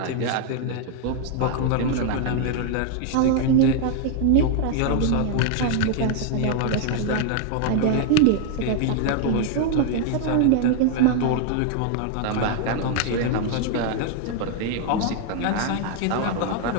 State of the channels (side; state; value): both; different; correlation 0.00